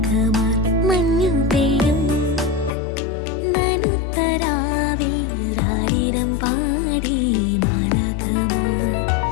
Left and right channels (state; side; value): drops out; right; at 2.7 s